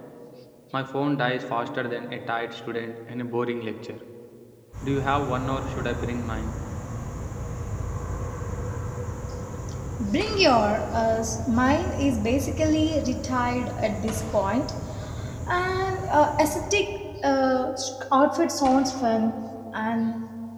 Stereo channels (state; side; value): identical; both; correlation 1.00